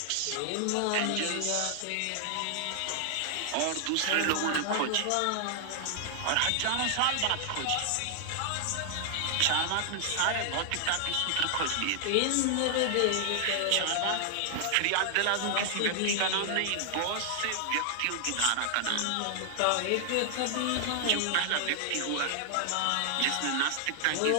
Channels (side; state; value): both; different; correlation 0.00